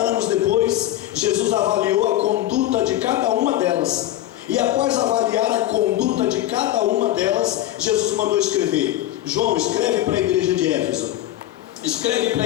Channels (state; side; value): quieter; right; 14.1 dB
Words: depois, Jesus avaliou a conduta de cada uma delas. E após avaliar a conduta de cada uma delas, Jesus mandou escrever: João, escreve para a igreja de Éfeso, escreve para